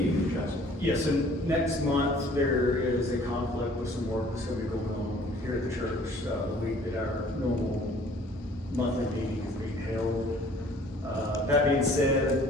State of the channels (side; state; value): both; normal; correlation 0.54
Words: adjustment. Yes, and next month there is a conflict with some work that's going to be going on here at the church the week that our normal monthly meeting is being held. That being